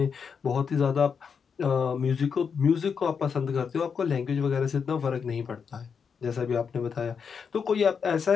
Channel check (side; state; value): right; quieter; 6.3 dB